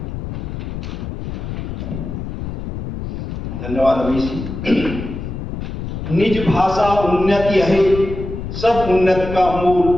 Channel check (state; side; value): noise; left; rumble, 6 dB below the sound